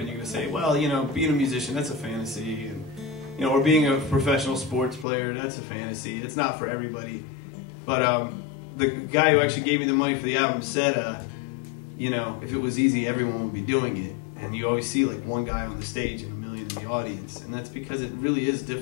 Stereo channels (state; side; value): drops out; right; at 5.1 s